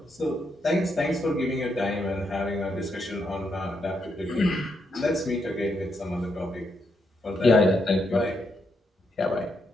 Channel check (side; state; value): both; normal; correlation 0.80